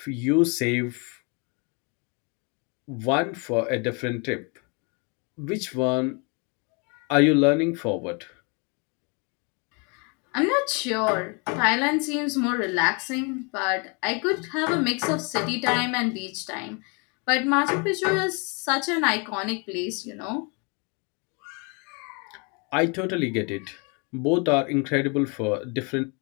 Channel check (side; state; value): right; quieter; 33.0 dB